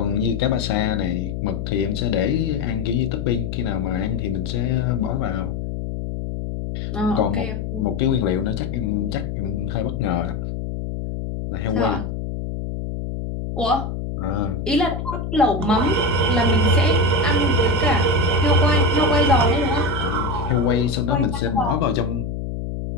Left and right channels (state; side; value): noise; left; hum, 5 dB below the sound